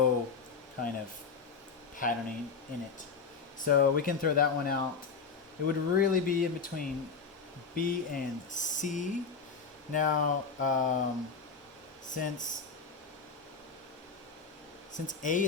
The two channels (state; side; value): quieter; right; 5.1 dB